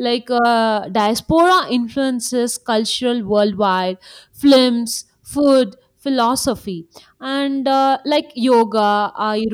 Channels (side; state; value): both; identical; correlation 1.00